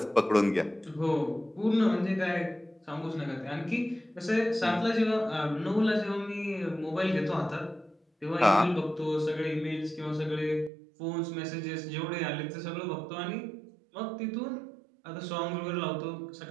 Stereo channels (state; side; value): drops out; left; at 10.7 s